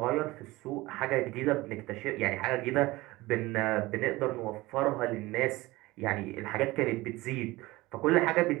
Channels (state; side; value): quieter; left; 20.0 dB